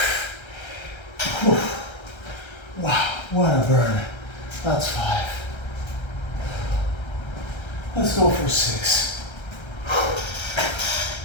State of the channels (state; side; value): late; right; 1.3 ms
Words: Whew. Wow, what a burn. That's 5. Let's go for 6.